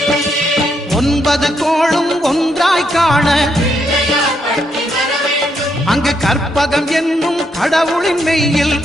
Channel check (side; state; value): both; normal; correlation 0.77